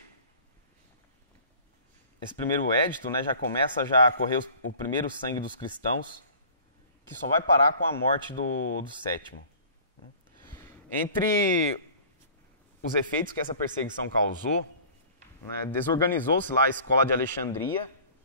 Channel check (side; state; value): both; inverted; correlation -0.46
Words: primeiro edito, né, já começa a correr o primeiro sangue dos cristãos, que só vai parar com a morte do sétimo. Entre os efeitos que essa perseguição causou, né, desorganizou-se lá a escola de Alexandria,